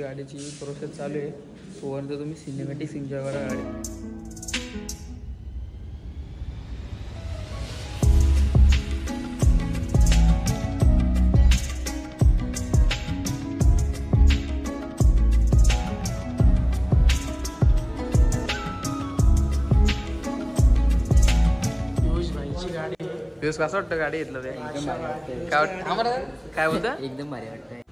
प्रोसेस चालू आहे. तोपर्यंत तुम्ही सिनेमॅटिक्स एन्जॉय करा गाडी. दिवस कसं वाटतं गाडी घेतलं ते काय वाटतं आम्हाला काय बोलतं एकदम भारी वाटतंय.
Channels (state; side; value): identical; both; correlation 1.00